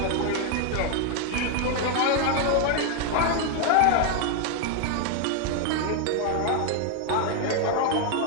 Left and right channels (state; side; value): different; both; correlation 0.01